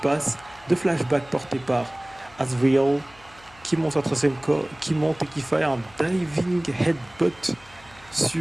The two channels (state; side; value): noise; left; hum, 26 dB below the sound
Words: de flashback porté par Azrael qui monte qui monte et qui fait un diving headbutt